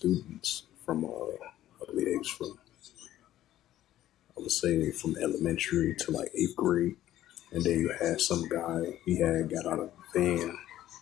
from, I believe it was from, I would say from elementary to like 8th grade. And then you had some guy, he had got out of the van,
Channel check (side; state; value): right; quieter; 13.2 dB